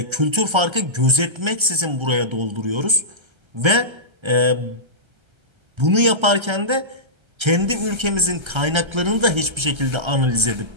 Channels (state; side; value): late; left; 1.3 ms